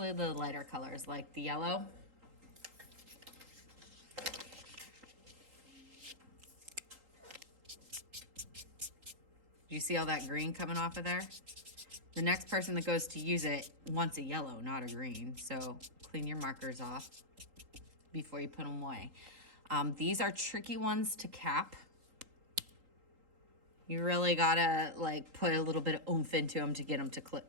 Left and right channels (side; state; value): left; late; 3.8 ms